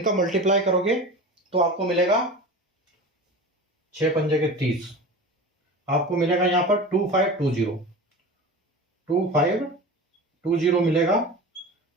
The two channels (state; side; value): normal; both; correlation 0.32